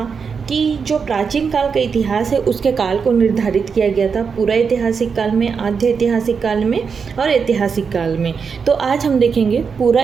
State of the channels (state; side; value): quieter; left; 5.8 dB